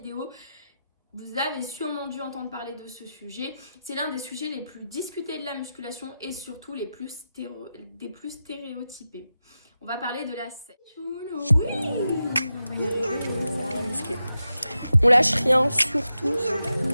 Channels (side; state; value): both; inverted; correlation -0.90